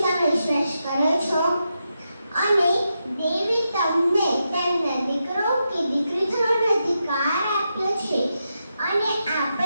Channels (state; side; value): inverted; both; correlation -0.86